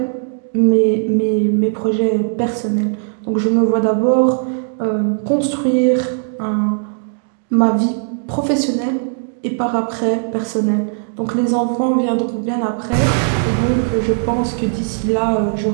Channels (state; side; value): silent; left; digital silence